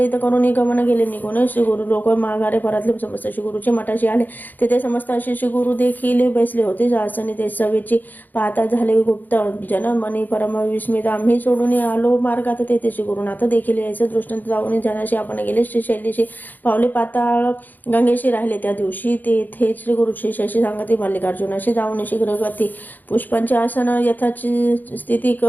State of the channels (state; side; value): late; right; 0.085 ms